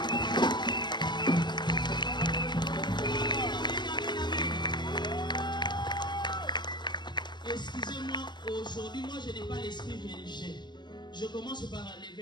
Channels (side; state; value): right; late; 0.22 ms